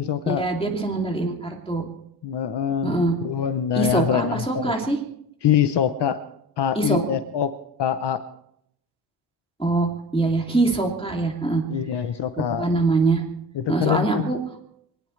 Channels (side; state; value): both; normal; correlation 0.35